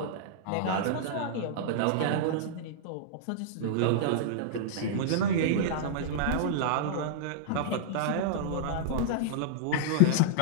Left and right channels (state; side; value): different; both; correlation -0.02